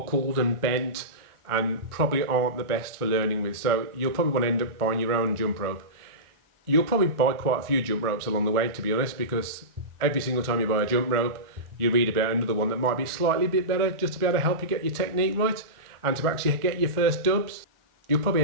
and bent, and probably aren't the best for learning with. So you'll probably want to end up buying your own jump rope. You'll probably buy quite a few jump ropes along the way, to be honest, because every single time you buy a jump rope, you read about another one that might be slightly bit better, just to be able to help you get your technique right and to actually get your first dubs. You'll probably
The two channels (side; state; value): left; late; 1.4 ms